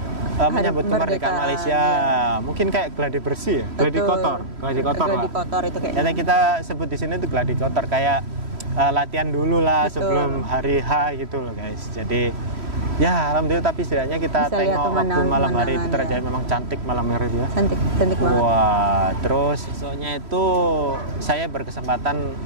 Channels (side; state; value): left; late; 3.1 ms